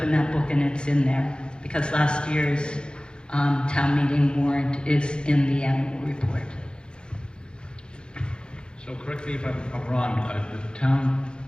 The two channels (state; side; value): late; right; 0.050 ms